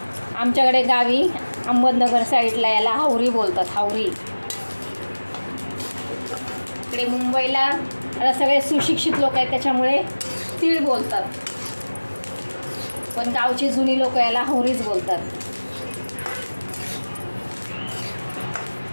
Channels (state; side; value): inverted; both; correlation -1.00